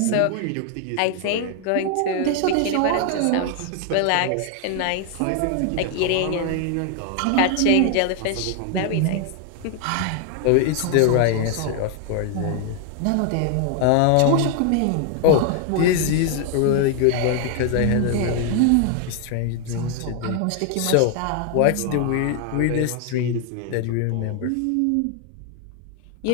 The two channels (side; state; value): both; different; correlation 0.00